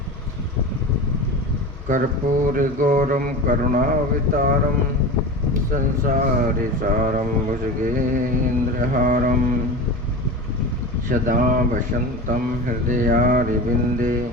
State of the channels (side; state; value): both; normal; correlation 0.29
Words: कर्पूरगौरं करुणावतारं संसारसारं भुजगेन्द्रहारं सदा वसन्तं हृदयारविन्दे